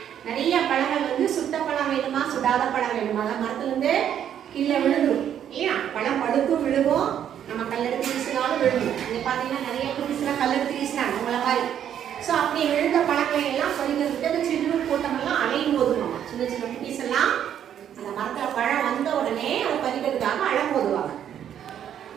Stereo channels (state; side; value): quieter; left; 9.7 dB